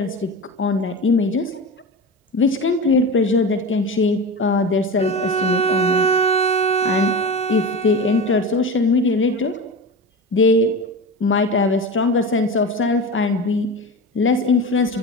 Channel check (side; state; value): both; normal; correlation 0.27